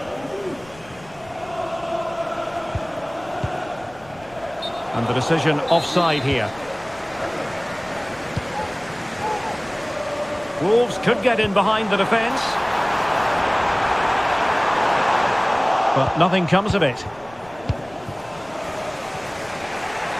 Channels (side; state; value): left; noise; rumble, 23 dB below the sound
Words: And the decision offside here. Wolves could get in behind the defence. But nothing comes of it.